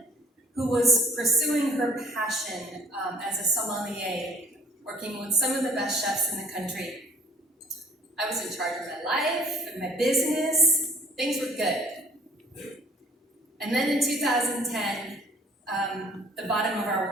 who was pursuing her passion as a sommelier, working with some of the best chefs in the country. I was in charge of my life and my business. Things were good. And then in 2010, the bottom of our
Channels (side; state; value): both; normal; correlation 0.55